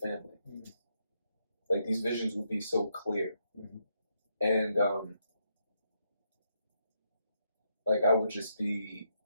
Mm-hmm. Like these visions would be so clear. Mm-hmm. And like I would be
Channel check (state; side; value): inverted; both; correlation -0.78